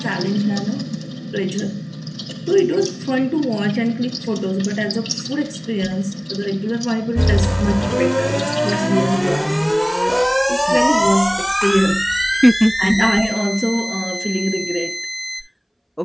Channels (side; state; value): both; identical; correlation 1.00